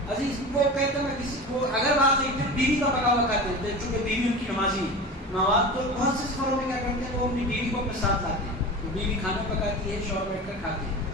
عزیز وہ کہتے ہیں میں کسی کو اگر واقعی پھر بیوی کا پکا ہوا کھاتے ہیں, چونکہ بیوی ان کی نمازی مواد, تو بہت سے سفروں میں کیا کرتے ہیں وہ اپنی بیوی کو اپنے ساتھ لاتے ہیں. بیوی کھانا پکاتی ہے, شوہر بیٹھ کر کھاتے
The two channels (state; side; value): normal; both; correlation 0.31